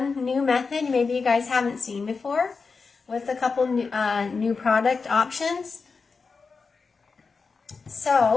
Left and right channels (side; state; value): right; quieter; 4.7 dB